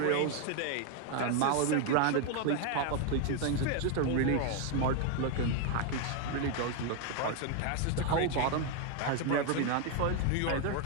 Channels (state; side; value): different; both; correlation 0.01